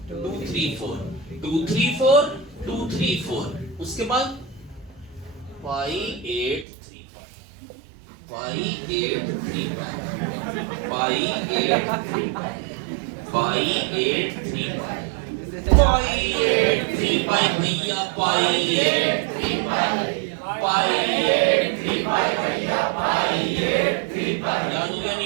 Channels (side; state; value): left; drops out; at 6.7 s